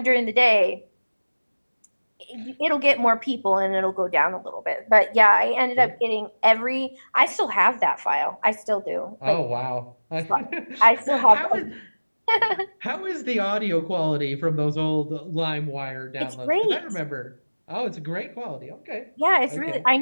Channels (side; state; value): both; inverted; correlation -1.00